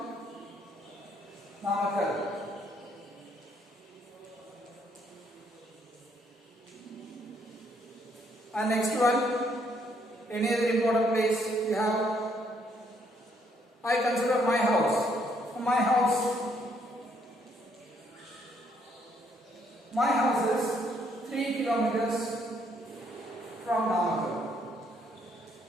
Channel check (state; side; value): normal; both; correlation 0.70